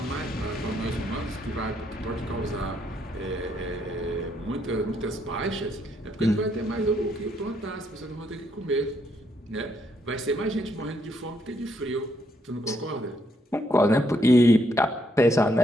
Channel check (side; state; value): both; normal; correlation 0.74